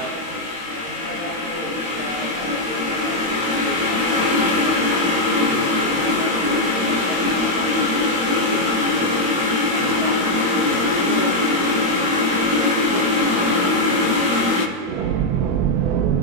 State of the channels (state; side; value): late; left; 22 ms